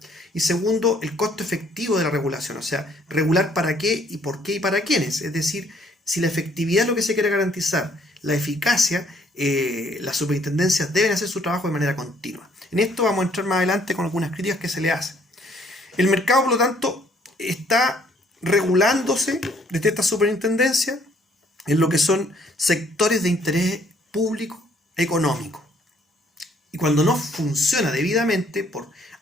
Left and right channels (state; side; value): normal; both; correlation 0.64